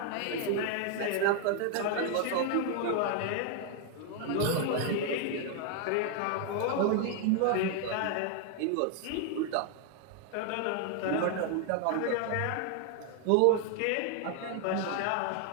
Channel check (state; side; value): different; both; correlation 0.00